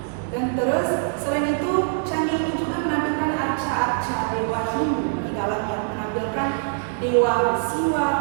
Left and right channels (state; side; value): silent; left; digital silence